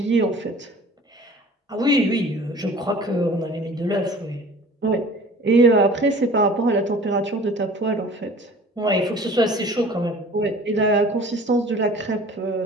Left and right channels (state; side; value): normal; both; correlation 0.46